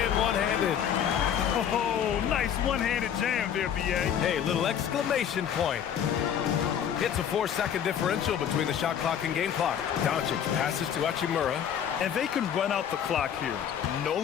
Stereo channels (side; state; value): right; quieter; 9.0 dB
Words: one-handed. Oh, nice one-handed jam there, B.A. Hey, little exclamation point. It's a 4-second differential between the shot clock and game clock. Doncic passes to Hachimura. And they can run out the clock here.